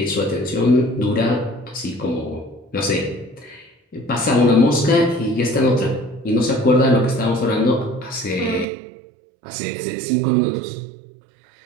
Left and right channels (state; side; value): drops out; left; at 8.7 s